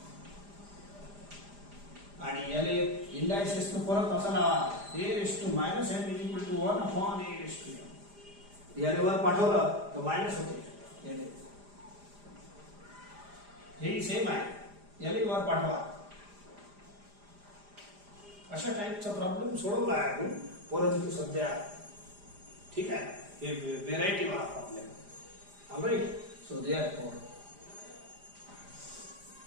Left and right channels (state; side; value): late; left; 4.9 ms